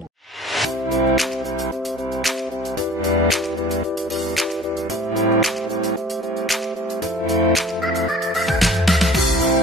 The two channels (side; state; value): both; normal; correlation 0.48